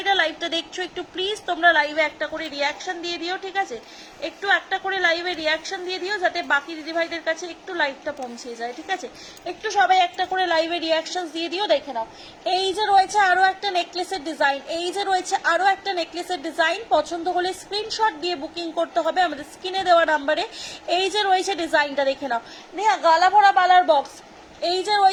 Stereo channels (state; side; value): identical; both; correlation 1.00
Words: লাইভটা দেখছো, একটু প্লিজ তোমরা লাইভে একটা করে রিয়াকশন দিয়ে দিও। ঠিক আছে, একটু একটা করে লাইভে রিয়াকশন দিয়ে দিও, যাতে বাকি দিদি ভাইদের কাছে একটু লাইভটা পৌঁছে যায়। ঠিক আছে, একটু সবাই একটা করে লাইভে রিয়াকশন দিয়ে দিও। দেখে নাও, এই যে রয়েছে আরো একটা নেকলেসের ডিজাইন, এই যে রয়েছে আরো একটা নেকলেসের ডিজাইন। পছন্দ হলে স্ক্রিনশট দিয়ে বুকিং করতে হবে আমাদের স্ক্রিনে দেওয়া নাম্বারে। এই যে রয়েছে ডিজাইনটা, দেখে নাও, নেহা গালা ভরা বালার বক্স। এই যে